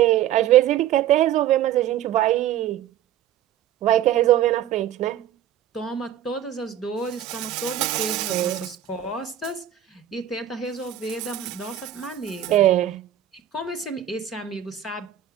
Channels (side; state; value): left; quieter; 11.2 dB